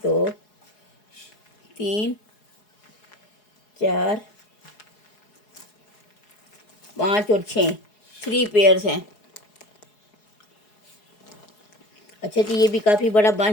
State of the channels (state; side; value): late; right; 4.7 ms